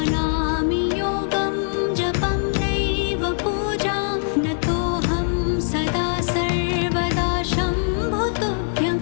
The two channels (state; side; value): silent; right; digital silence